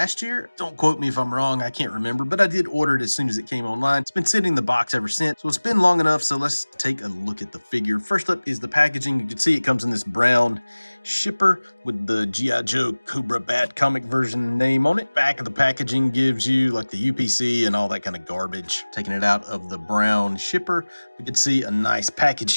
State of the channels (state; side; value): inverted; both; correlation -1.00